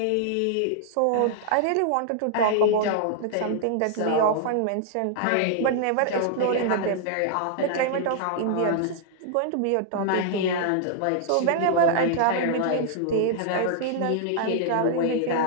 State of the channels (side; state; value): both; different; correlation -0.01